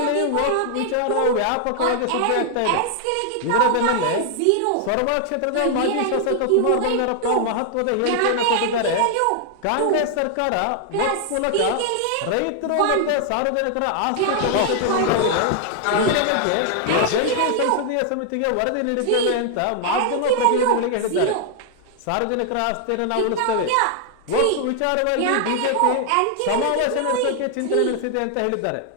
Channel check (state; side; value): different; both; correlation 0.00